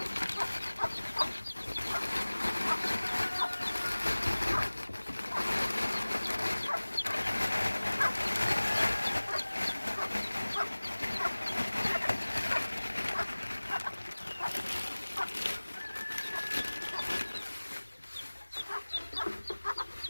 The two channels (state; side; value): inverted; both; correlation -1.00